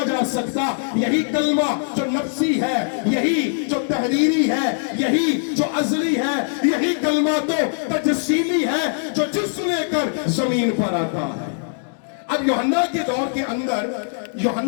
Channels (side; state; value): right; silent; 65 dB below the other